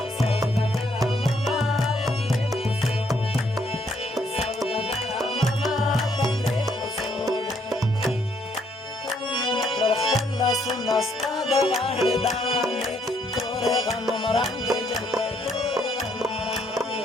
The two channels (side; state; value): both; normal; correlation 0.70